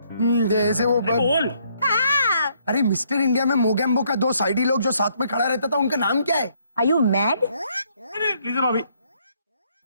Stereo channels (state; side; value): inverted; both; correlation -0.69